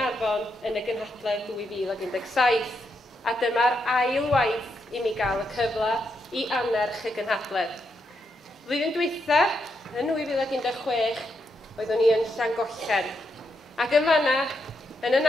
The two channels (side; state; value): both; normal; correlation 0.81